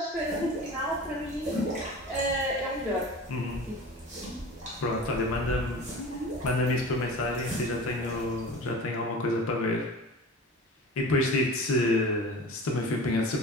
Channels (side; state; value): both; normal; correlation 0.37